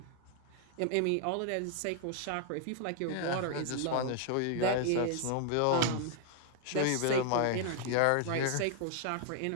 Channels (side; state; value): both; different; correlation 0.00